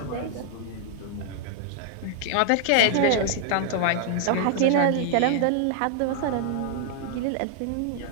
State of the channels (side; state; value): both; different; correlation -0.01